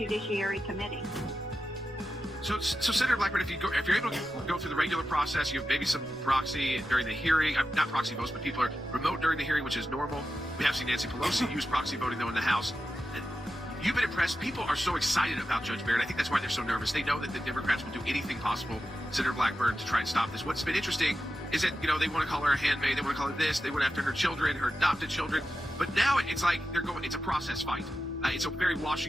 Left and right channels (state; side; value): noise; right; rumble, 22 dB below the sound